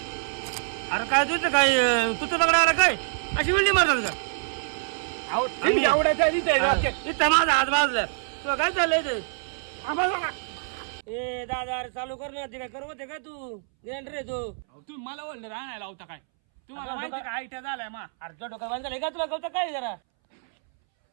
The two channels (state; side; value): silent; left; 61 dB below the other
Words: अरे काय तुझं काय तुझं दगड आला काय अशी वेल्डिंग मारतात का अहो तुम्ही एवढ्याच्या इथं माझा हात भाजला तुला काय चाललंय ते ए दादा अरे चालू कर ना ते काय करवत आहे काय तू ग्रँडर आहे तू तुम्ही मला वेल्डर आणायला होता काय तुम्हाला माहिती का आयट्या झालाय मा अरे तुझ्या डोक्यात बांधलं का तुला कळतं काय जरा